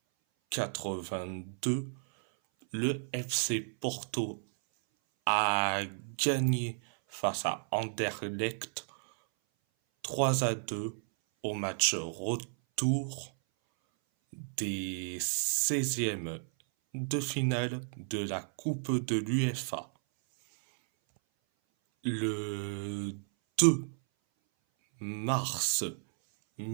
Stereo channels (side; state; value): left; silent; 56 dB below the other